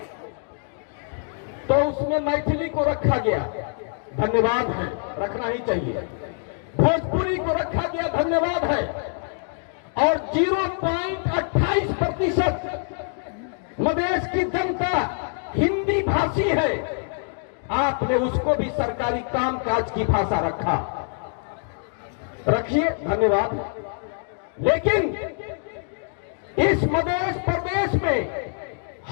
तो उसमें मैथिली को रखा गया, धन्यवाद है, रखना ही चाहिए। भोजपुरी को रखा गया, धन्यवाद है, और 0.28% मधेश की जनता हिंदी भाषी है, आपने उसको भी सरकारी कामकाज की भाषा रखा, रखिए, धन्यवाद। लेकिन इस मध्य प्रदेश में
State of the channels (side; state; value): right; silent; 59 dB below the other